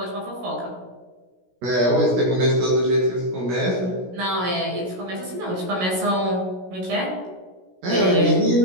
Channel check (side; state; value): left; late; 16 ms